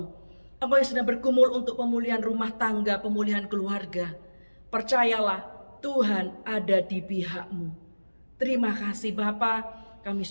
Engkau yang sedang bergumul untuk pemulihan rumah tangga, pemulihan keluarga, percayalah Tuhan ada di pihak-Mu. Terima kasih Bapa, kami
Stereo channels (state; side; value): inverted; both; correlation -1.00